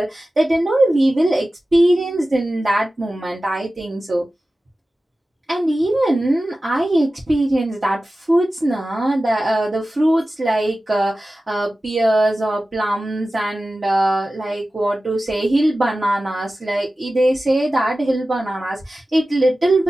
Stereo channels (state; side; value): normal; both; correlation 0.95